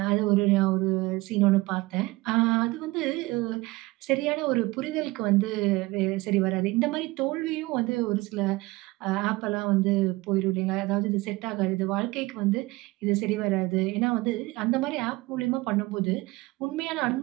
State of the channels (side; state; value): left; quieter; 21.4 dB